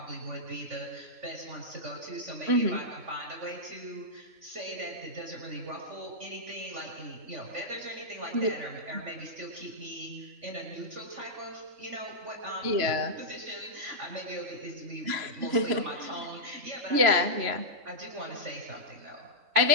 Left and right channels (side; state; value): left; late; 3.0 ms